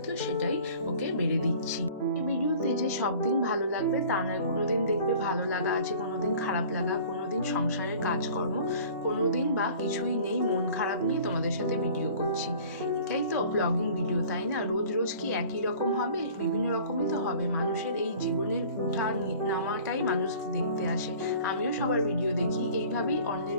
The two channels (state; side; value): inverted; both; correlation -0.47